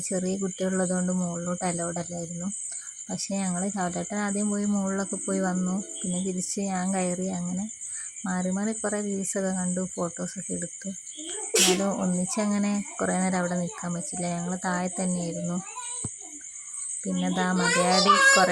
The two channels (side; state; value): both; identical; correlation 1.00